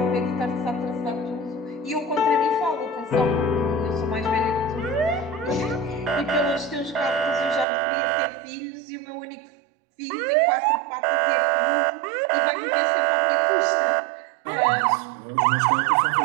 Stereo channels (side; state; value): left; drops out; at 7.7 s